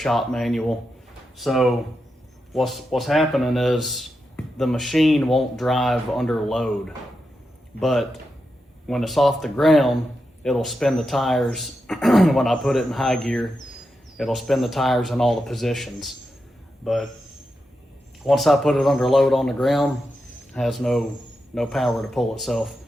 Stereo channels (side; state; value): both; normal; correlation 0.87